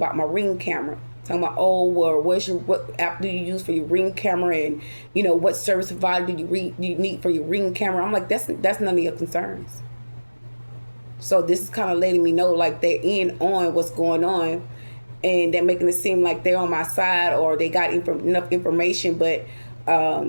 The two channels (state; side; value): inverted; both; correlation -1.00